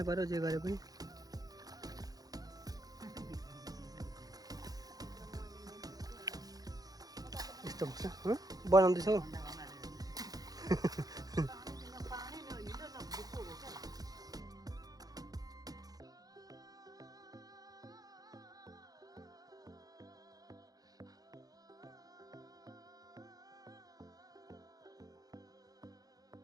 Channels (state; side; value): late; left; 0.18 ms